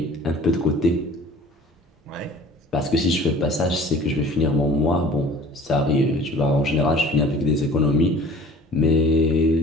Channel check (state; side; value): normal; both; correlation 0.46